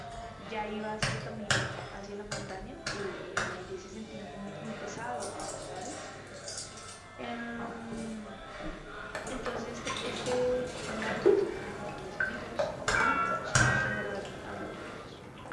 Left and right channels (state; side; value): identical; both; correlation 1.00